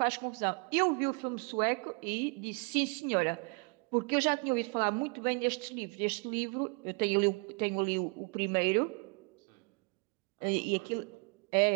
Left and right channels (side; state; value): left; quieter; 32.9 dB